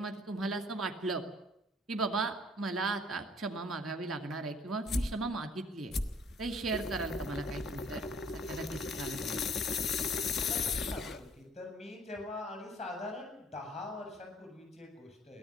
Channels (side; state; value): both; normal; correlation 0.57